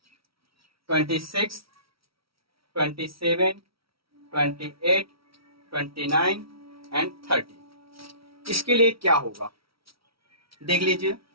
26, 27, 28, 29 एंड 30। इसके लिए क्या होगा देख लीजिए,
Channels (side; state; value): left; late; 0.75 ms